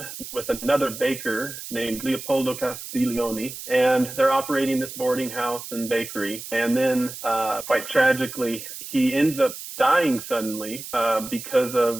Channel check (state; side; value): noise; right; hiss, 11 dB below the sound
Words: with another baker named Leopoldo Castiglione, and they're operating this boarding house and bakery. And then, quite tragically, he ends up dying suddenly because